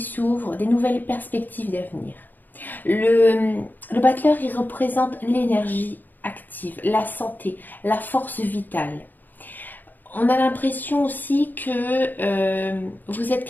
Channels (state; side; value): late; right; 0.087 ms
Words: des nouvelles perspectives d'avenir. Le battleur, il représente l'énergie active, la santé, la force vitale. On a l'impression aussi que vous êtes